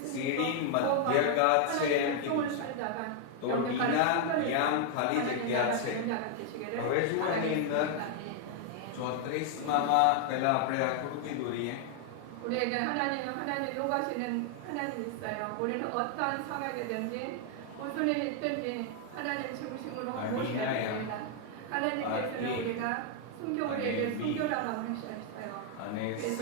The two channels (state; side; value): different; both; correlation 0.00